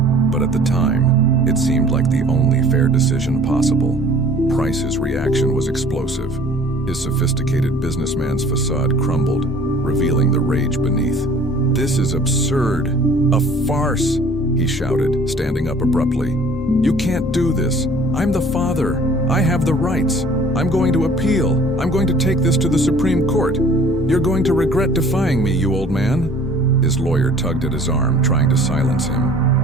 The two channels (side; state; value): both; normal; correlation 0.51